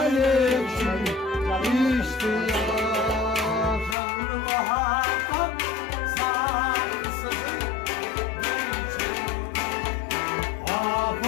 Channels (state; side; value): drops out; right; at 4.0 s